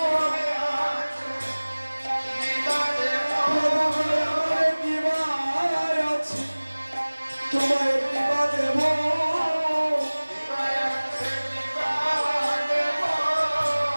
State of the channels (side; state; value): both; inverted; correlation -1.00